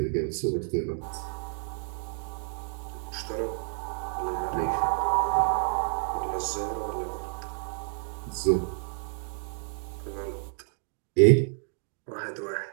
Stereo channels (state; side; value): silent; left; 58 dB below the other